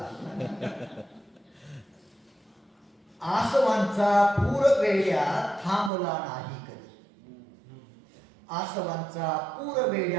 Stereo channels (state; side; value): drops out; left; at 5.9 s